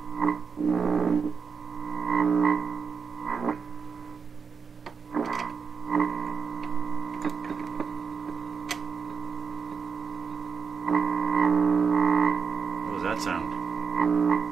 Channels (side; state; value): left; quieter; 5.8 dB